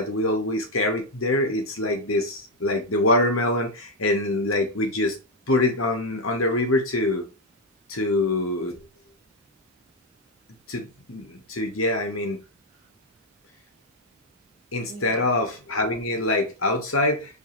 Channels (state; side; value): normal; both; correlation 0.02